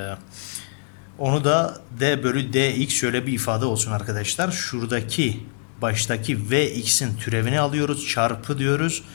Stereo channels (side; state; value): right; silent; digital silence